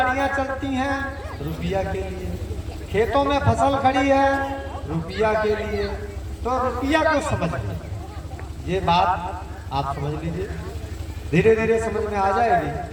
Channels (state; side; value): identical; both; correlation 1.00